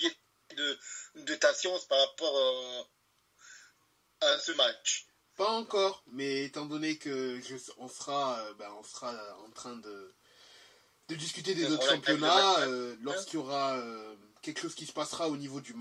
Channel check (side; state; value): both; identical; correlation 1.00